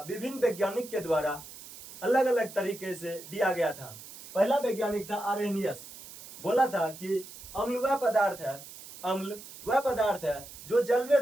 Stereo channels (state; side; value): noise; right; hiss, 16 dB below the sound